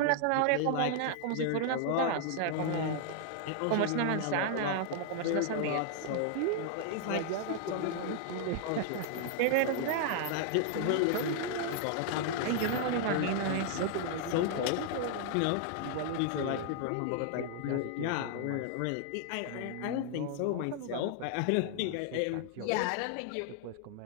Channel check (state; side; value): different; both; correlation 0.00